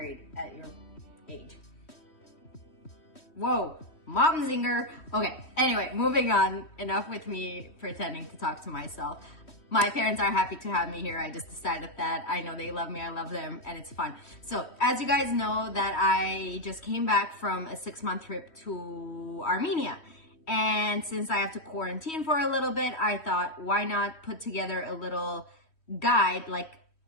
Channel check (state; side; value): late; right; 3.1 ms